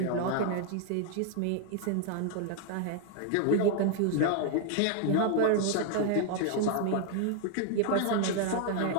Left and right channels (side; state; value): both; different; correlation 0.00